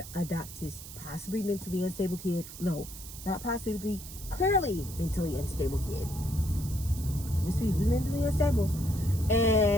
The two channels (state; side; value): noise; right; hiss, 13 dB below the sound